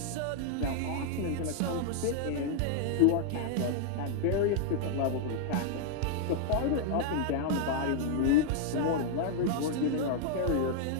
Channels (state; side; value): different; both; correlation 0.00